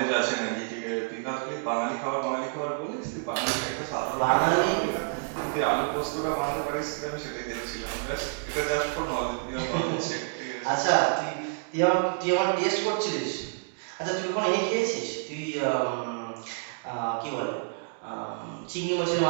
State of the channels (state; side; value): silent; left; digital silence